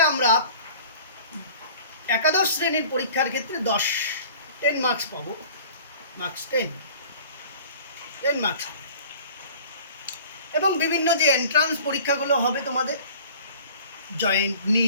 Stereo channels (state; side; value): inverted; both; correlation -0.46